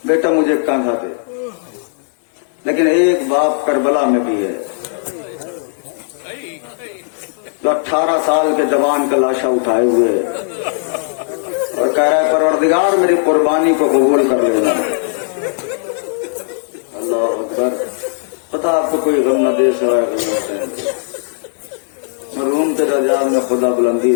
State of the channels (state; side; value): silent; right; 69 dB below the other